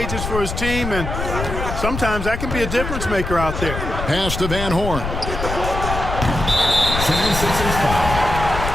for his team, and sometimes that can be a difference maker out there. Pass to Van Horn. 76ers foul.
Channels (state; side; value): noise; left; rumble, 5 dB below the sound